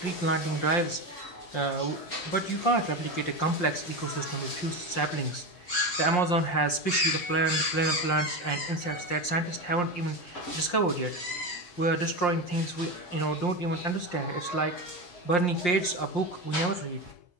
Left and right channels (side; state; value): right; late; 5.7 ms